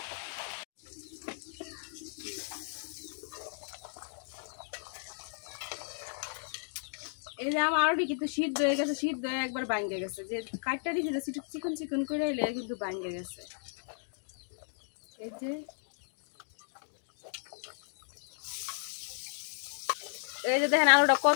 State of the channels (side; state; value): right; silent; digital silence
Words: এই যে আমার আলুটি কিন্তু সিদ্ধ হয়ে গেছে, সিদ্ধ হয়ে একবার ভাঙ্গে গেছে। যে কাটটা দিয়েছে চিকন চিকন করে এলে কিন্তু ভাঙ্গে গেছে। এই যে দেখেন আলুটা